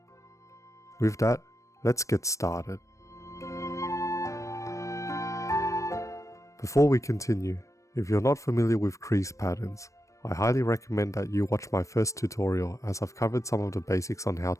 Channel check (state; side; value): late; right; 0.15 ms